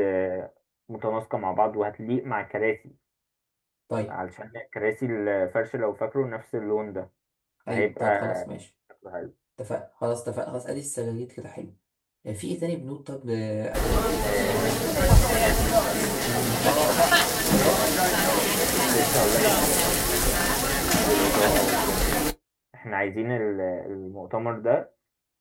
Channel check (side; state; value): both; identical; correlation 1.00